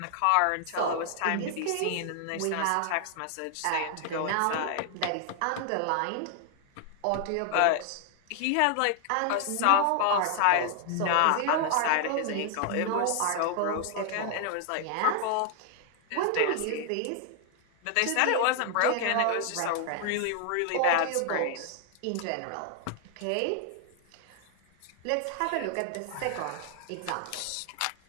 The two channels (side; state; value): both; different; correlation 0.00